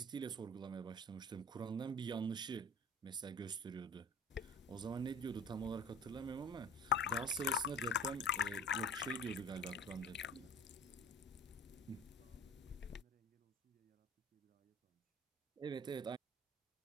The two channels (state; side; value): normal; both; correlation 0.40